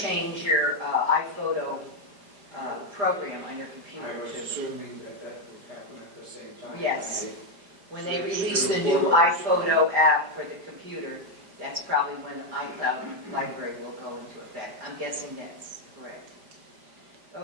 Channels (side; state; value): left; late; 5.0 ms